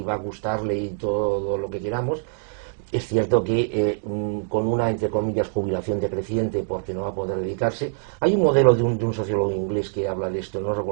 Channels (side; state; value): left; silent; digital silence